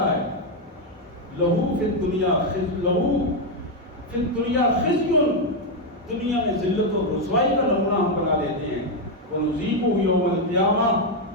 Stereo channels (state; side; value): normal; both; correlation 0.03